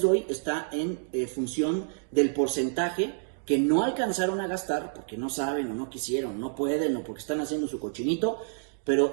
doy está en función del porcentaje que no alcanzaron a gastar porque no saben o no quisieron, no pueden o porque están haciendo su cochinito, pero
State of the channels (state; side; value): silent; left; digital silence